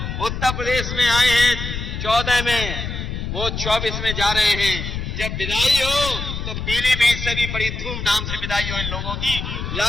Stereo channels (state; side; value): noise; left; rumble, 5 dB below the sound